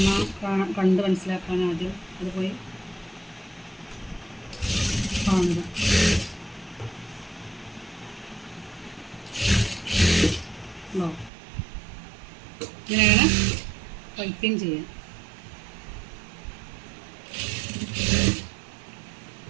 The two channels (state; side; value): drops out; left; at 11.3 s